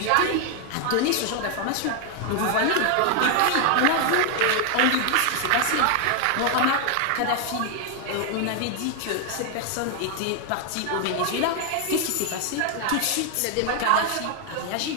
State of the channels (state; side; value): different; both; correlation 0.01